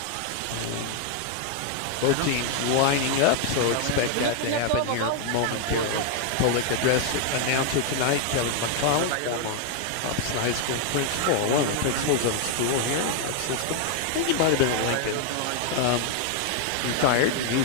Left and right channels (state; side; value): different; both; correlation 0.00